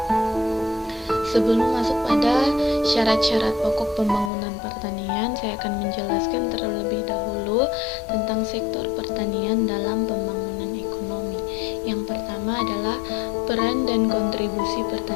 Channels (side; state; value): right; drops out; at 4.3 s